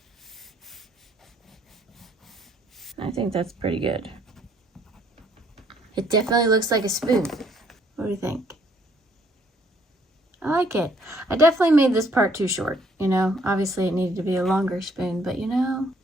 I think that's pretty good. It definitely looks like a spoon. What do you think? I like it. I definitely made this part too short, you know. Obviously it needed to be a longer spoon, but you know,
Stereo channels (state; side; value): normal; both; correlation 0.65